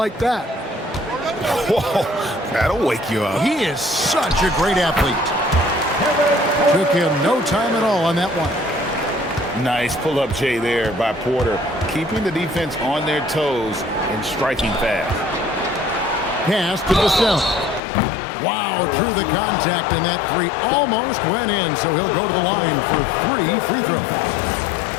that. Whoa, that'll wake you up. He is such a great athlete. Took him no time at all on that one. Nice pull-up J there by Porter, keeping the defense on their toes and striking fast. Pass to Vassell. Wow, through the contact, and that three almost went in, so he'll go to the line for 3 free throws.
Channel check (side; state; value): right; drops out; at 17.8 s